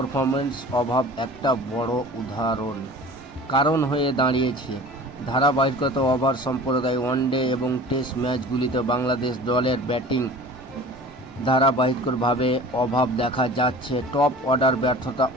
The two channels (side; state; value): both; normal; correlation 0.41